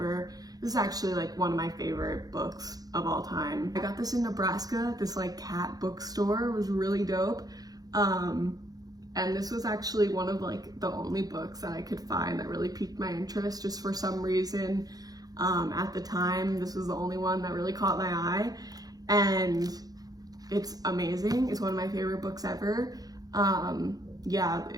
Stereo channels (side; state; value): left; late; 0.18 ms